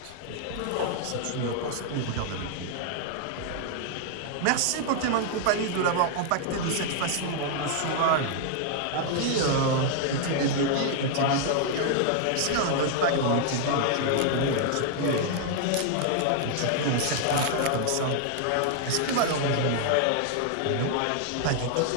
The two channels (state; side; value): different; both; correlation 0.00